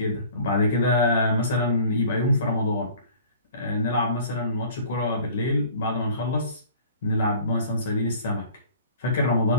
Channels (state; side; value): inverted; both; correlation -0.48